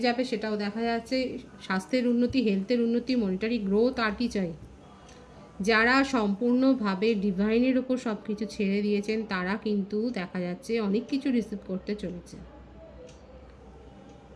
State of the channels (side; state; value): both; identical; correlation 1.00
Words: যাবে, সেটাও দেখা যাচ্ছে। স্বাস্থ্যের উন্নতি, হেলথের উন্নতি, মনিটারি গ্রোথ, আর কি চাই। যারা সম্পূর্ণভাবে ডিভাইনের ওপর সব কিছু ছেড়ে দিয়েছেন তারা কিন্তু দেখা যাচ্ছে অনেক কিছু রিসিভ করতে চলেছে।